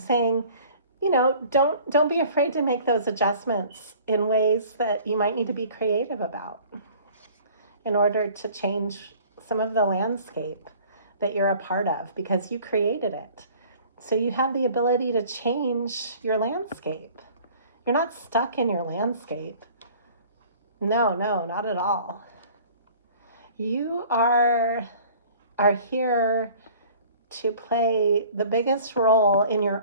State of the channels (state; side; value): inverted; both; correlation -0.49